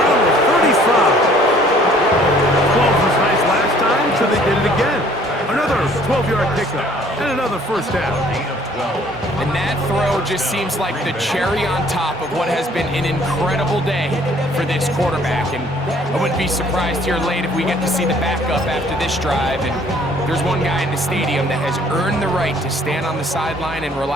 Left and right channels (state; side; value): normal; both; correlation 0.58